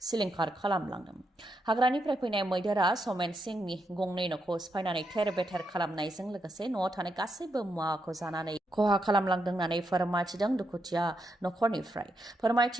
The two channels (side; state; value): both; normal; correlation 0.82